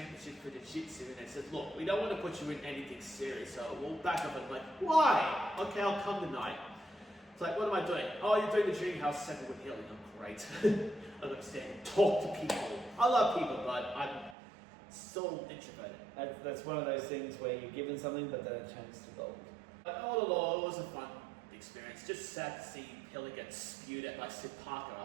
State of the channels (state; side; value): drops out; left; at 14.4 s